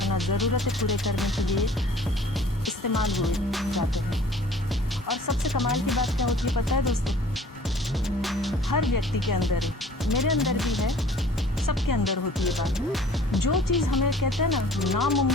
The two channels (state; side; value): normal; both; correlation 0.50